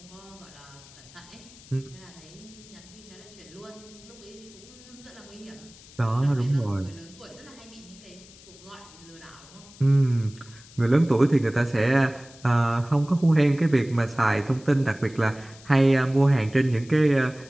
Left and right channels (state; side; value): noise; left; hiss, 22 dB below the sound